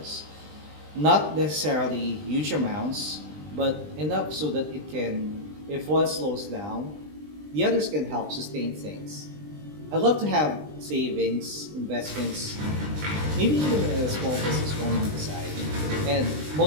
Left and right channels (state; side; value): late; left; 20 ms